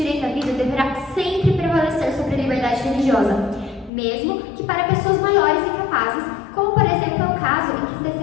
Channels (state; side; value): drops out; right; at 3.9 s